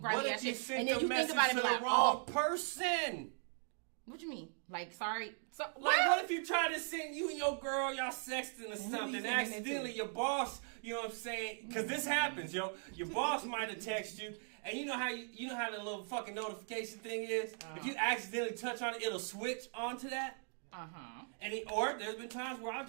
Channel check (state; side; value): silent; left; 52 dB below the other